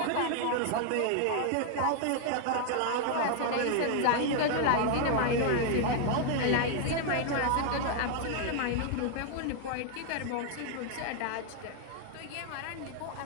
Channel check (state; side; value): different; both; correlation 0.00